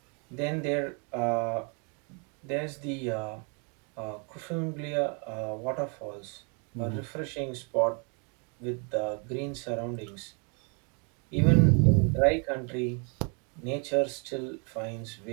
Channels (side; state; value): left; quieter; 37.0 dB